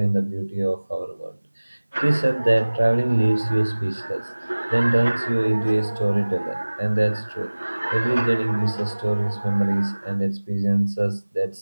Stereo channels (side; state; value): both; inverted; correlation -1.00